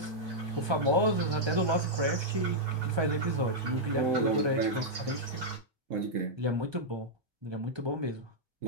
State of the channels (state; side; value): late; left; 1.3 ms